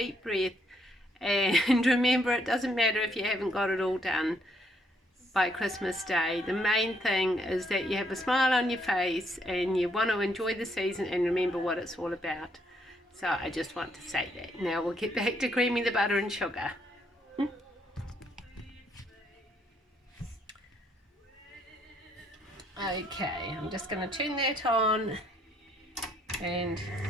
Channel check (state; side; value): normal; both; correlation 0.71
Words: breath and remember, it doesn't matter if you haven't got it all done by Christmas Day. The main thing is that you have a smile on your face and you want to enjoy the season and remember what it's all about. So I just want to say that. Now we'll get back to creaming the butter and sugar. Okay, I'm just going to turn that on and